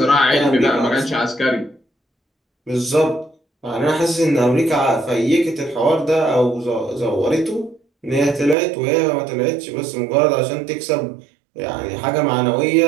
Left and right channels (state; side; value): drops out; left; at 8.6 s